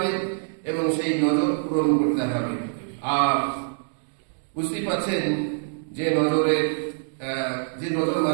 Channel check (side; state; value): left; silent; digital silence